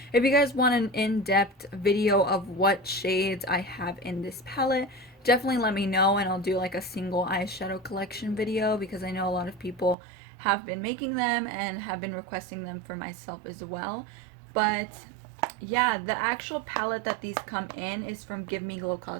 If you guys want an in-depth video of what shades I have in this palette, definitely let me know, and I'll do like a single eyeshadow collection video, because I know a lot of people have been making them and have been requesting them for myself as well. But yeah, the actual palette that these come in is from Give Me Glow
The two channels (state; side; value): drops out; left; at 10.0 s